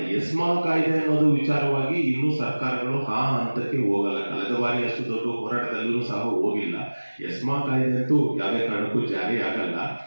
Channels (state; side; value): inverted; both; correlation -1.00